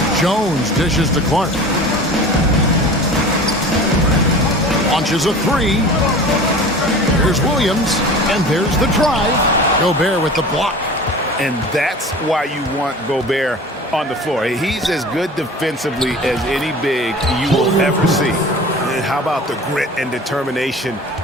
Jones dishes to Clark. Launches a 3. There's Williams. And there's the drive. Gobert with the block. And that's why you want Gobert on the floor. He's as good defensively as any big you will ever see. And how about the grit and determination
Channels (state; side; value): normal; both; correlation 0.39